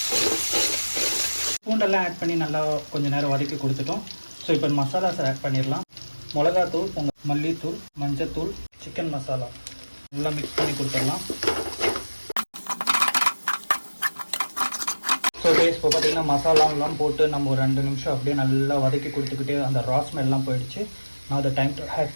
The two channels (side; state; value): both; inverted; correlation -1.00